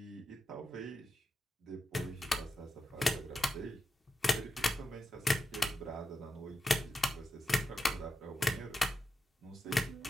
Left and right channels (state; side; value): normal; both; correlation 0.89